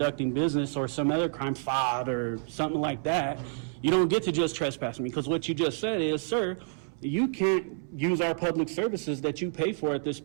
business or some other crime, fraud or something like that, you don't get to just trespass me. Because what you just said is, sir, you can't use our public services that you pay for at this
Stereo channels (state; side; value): silent; left; 59 dB below the other